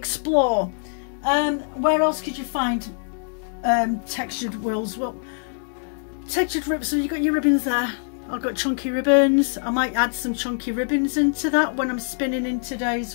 Where else could you find textured wools? Well, textured ribbons, so you've got your ribbons there. I've got chunky ribbons. I might add some chunky ribbons into that when I'm spinning in today as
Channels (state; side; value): silent; right; digital silence